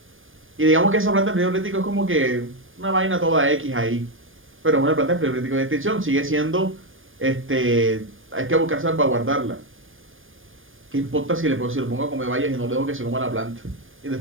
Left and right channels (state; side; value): late; left; 0.59 ms